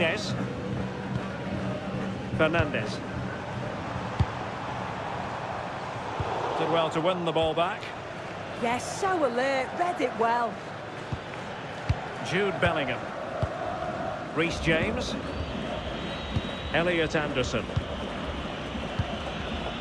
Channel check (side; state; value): both; identical; correlation 1.00